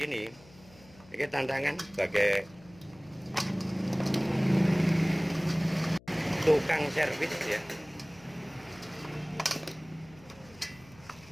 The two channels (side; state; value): left; noise; hum, 24 dB below the sound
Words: ini tantangan sebagai tukang servis ya.